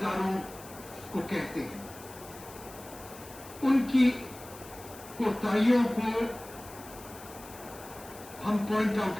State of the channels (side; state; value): left; noise; hiss, 17 dB below the sound